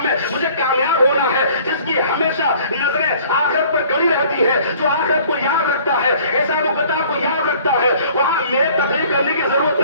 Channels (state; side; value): inverted; both; correlation -0.53